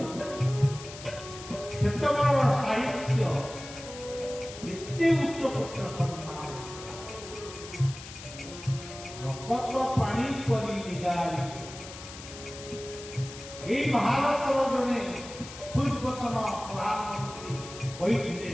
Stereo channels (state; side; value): noise; left; hiss, 14 dB below the sound